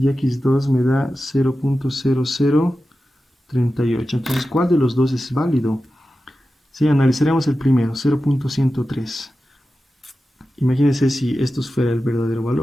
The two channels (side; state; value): both; normal; correlation 0.93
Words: x2 me da 0.0038. Entonces, ¿cuál de los dos es válido? Sí, analizaremos el primero, 0.103. Imagínense si esto fuera el verdadero